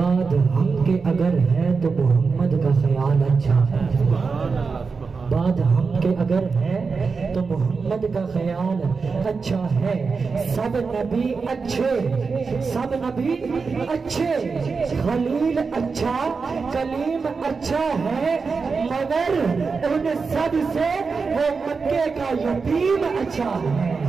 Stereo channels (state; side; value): quieter; left; 4.8 dB